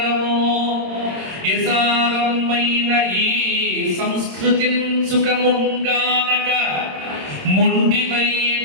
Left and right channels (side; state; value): left; late; 26 ms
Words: యసారమైన ఈ సంస్కృతిన్ సుఖముంగానక, మొండివై